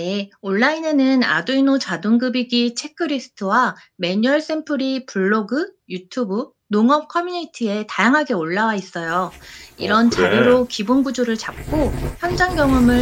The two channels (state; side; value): identical; both; correlation 1.00